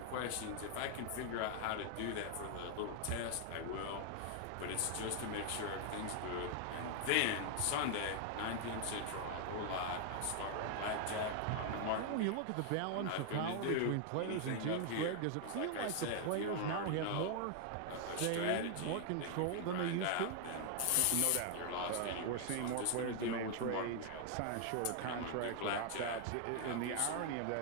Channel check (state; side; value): different; both; correlation 0.00